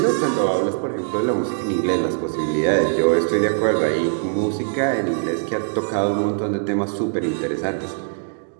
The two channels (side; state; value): left; silent; digital silence